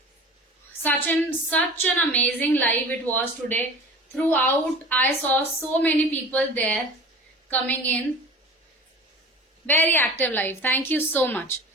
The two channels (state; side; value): normal; both; correlation 0.39